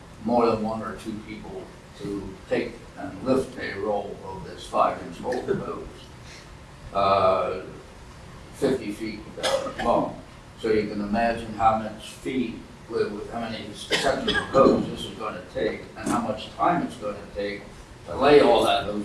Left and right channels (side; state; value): both; identical; correlation 1.00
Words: more than 1 or 2 people to take and lift a roll of this 5-inch hose, 50 feet long. So you can imagine how much feet, with how many sections of hose this is going to take, and how much time it's going to take to lay all that